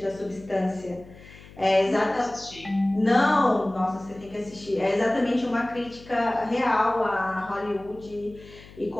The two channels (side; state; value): left; noise; hum, 20 dB below the sound